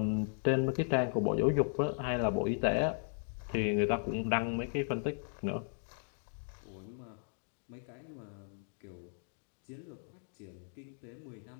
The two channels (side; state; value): right; silent; 54 dB below the other